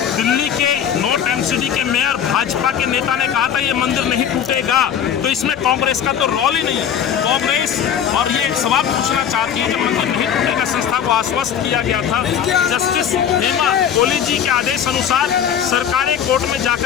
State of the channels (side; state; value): right; quieter; 8.7 dB